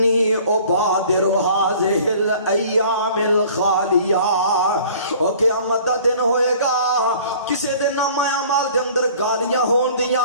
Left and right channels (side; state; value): both; inverted; correlation -0.50